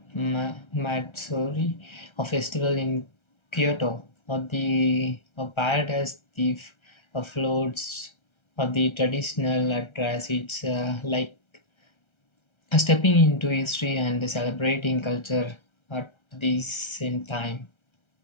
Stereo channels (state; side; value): late; right; 1.3 ms